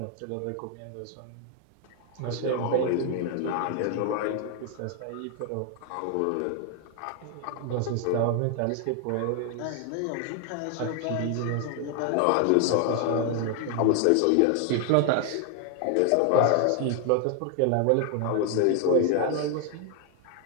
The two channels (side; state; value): both; different; correlation 0.00